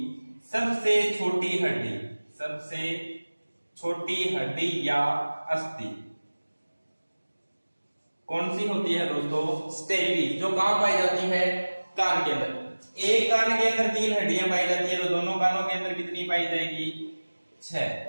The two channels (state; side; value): inverted; both; correlation -1.00